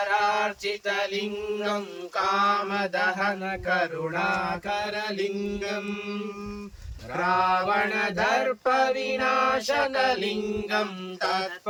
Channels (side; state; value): both; identical; correlation 1.00